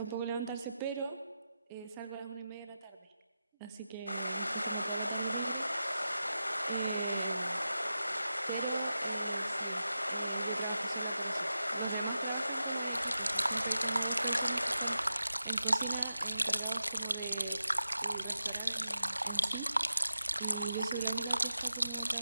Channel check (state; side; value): inverted; both; correlation -0.90